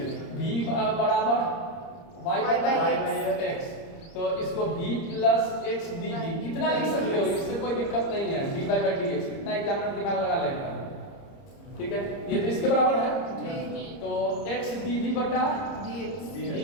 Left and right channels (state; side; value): late; right; 30 ms